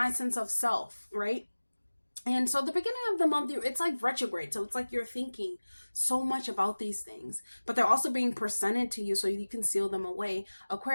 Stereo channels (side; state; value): both; inverted; correlation -1.00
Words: sense of self, right? And so the beginning of the month, it's like retrograde. So it's like you're thinking so much about these things, but they're also being presented to you so you can seal them away,